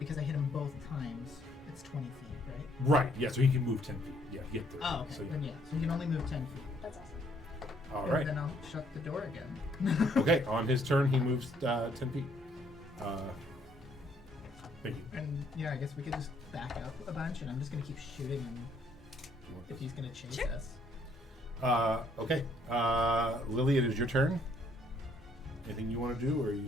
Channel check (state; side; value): normal; both; correlation 0.67